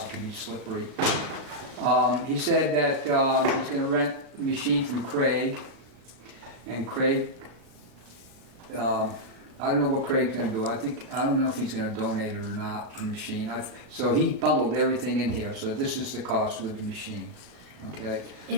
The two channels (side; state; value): left; late; 37 ms